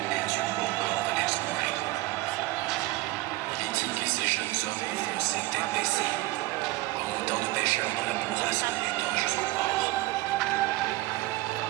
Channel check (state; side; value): quieter; left; 19.4 dB